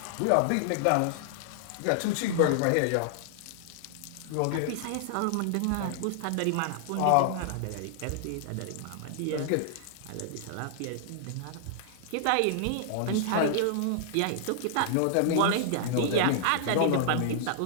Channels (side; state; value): both; different; correlation -0.01